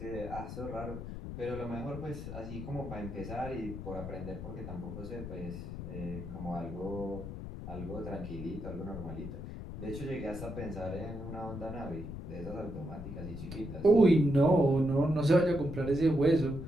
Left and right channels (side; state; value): left; noise; rumble, 8 dB below the sound